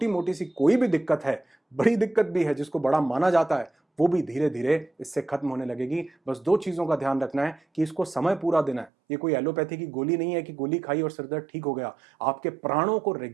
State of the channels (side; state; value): left; drops out; at 8.9 s